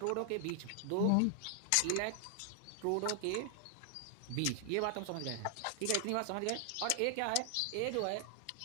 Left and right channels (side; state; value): both; different; correlation 0.00